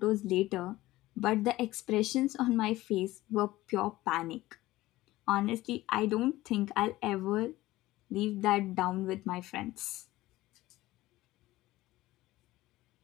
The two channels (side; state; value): right; quieter; 17.4 dB